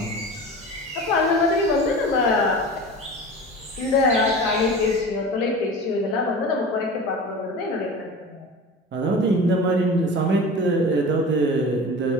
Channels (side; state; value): both; normal; correlation 0.34